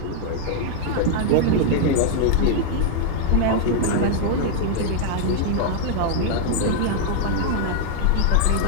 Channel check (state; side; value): different; both; correlation 0.00